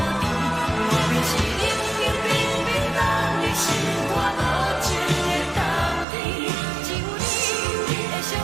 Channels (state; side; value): drops out; left; at 6.1 s